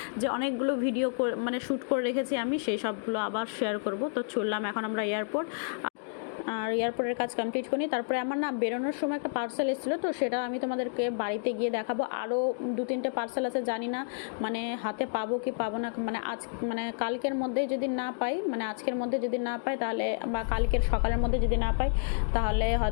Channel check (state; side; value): silent; right; digital silence